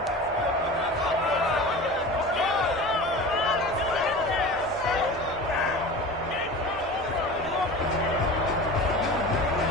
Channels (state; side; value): normal; both; correlation 0.34